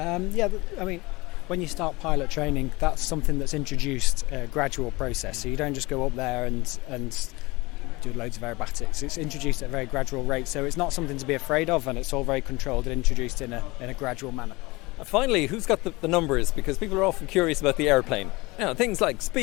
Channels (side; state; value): right; quieter; 22.9 dB